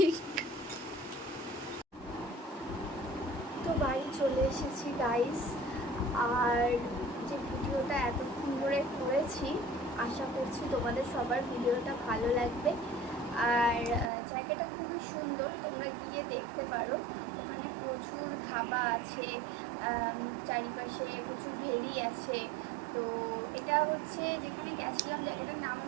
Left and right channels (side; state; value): left; drops out; at 14.1 s